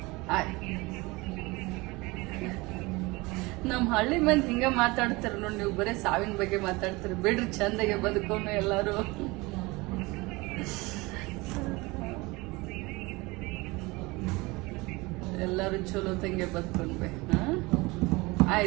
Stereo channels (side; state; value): left; quieter; 23.5 dB